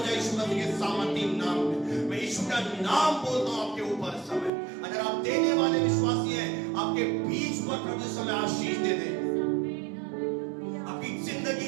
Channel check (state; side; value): drops out; left; at 4.5 s